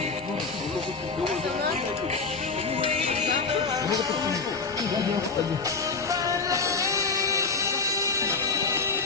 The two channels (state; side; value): quieter; right; 4.5 dB